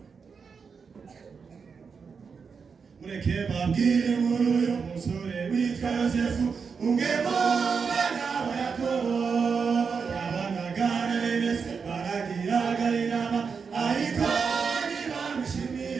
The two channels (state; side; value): quieter; left; 5.6 dB